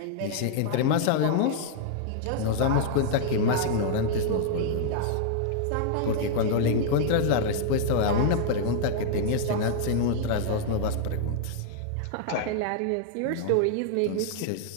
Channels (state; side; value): different; both; correlation -0.01